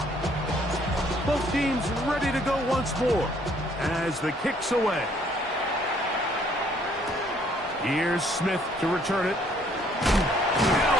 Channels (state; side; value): normal; both; correlation 0.63